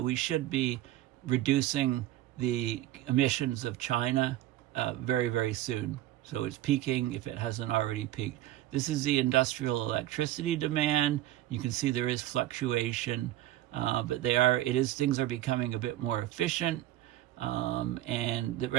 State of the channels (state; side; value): quieter; left; 14.4 dB